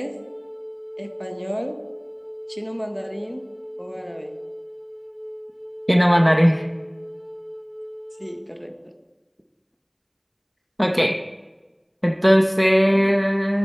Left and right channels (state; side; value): identical; both; correlation 1.00